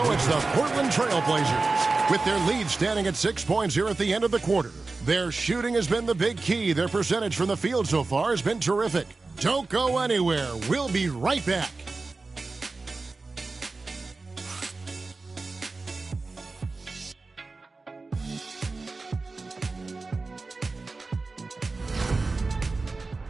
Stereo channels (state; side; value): quieter; left; 3.7 dB